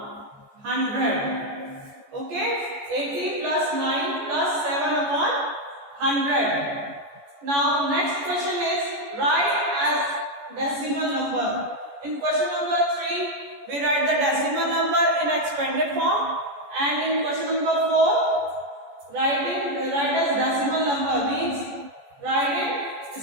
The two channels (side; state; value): left; late; 14 ms